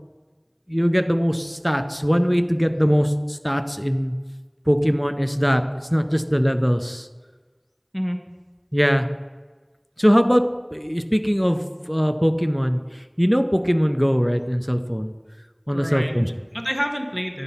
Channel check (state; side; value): identical; both; correlation 1.00